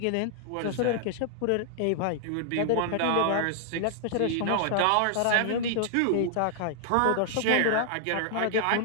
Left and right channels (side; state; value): both; different; correlation -0.01